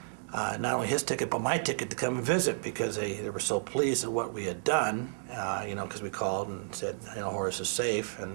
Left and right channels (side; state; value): left; silent; digital silence